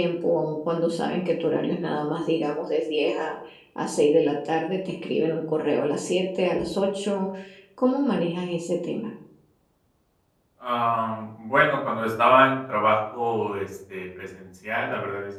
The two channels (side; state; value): both; identical; correlation 1.00